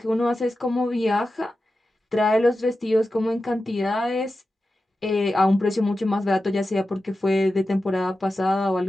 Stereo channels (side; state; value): both; normal; correlation 0.92